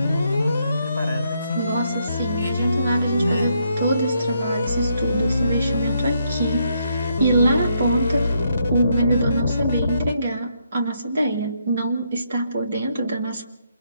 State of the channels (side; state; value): both; inverted; correlation -0.76